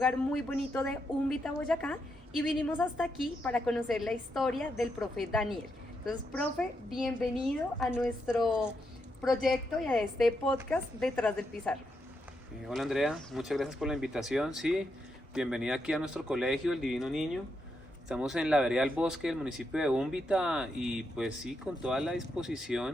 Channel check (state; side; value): normal; both; correlation 0.82